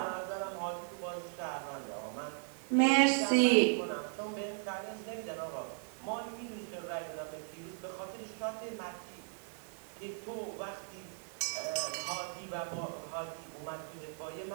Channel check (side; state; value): left; silent; 53 dB below the other